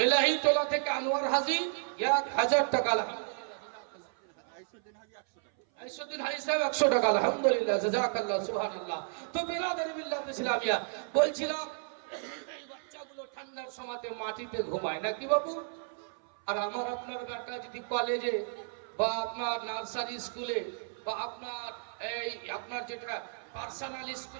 এলাহি তোলা থেকে আনোয়ার হাজী 1000 টাকা, আইসুদ্দিন হাজি সাহেব 100 টাকা, আলহামদুলিল্লাহ, জাযাকাল্লাহ, সুবহানাল্লাহ। তো বিরাদরি মিল্লাত ইসলামিয়া, বলছিলাম এই বাচ্চাগুলো ঠান্ডার সময়তে মাটিতে ঘুমায় নাকি বাবু? আর আমার আপনার বেটা যদি কলেজে বা আপনার নার্সারি স্কুলে বা আপনার যেটা পার্সোনাল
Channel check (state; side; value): silent; left; 56 dB below the other